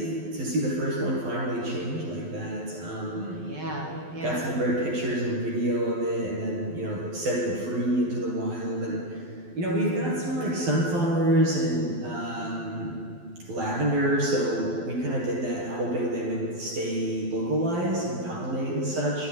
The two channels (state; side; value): late; left; 12 ms